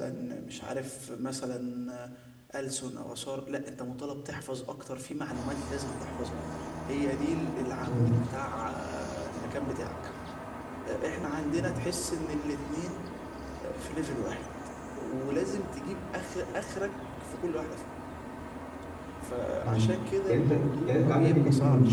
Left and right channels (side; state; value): both; identical; correlation 1.00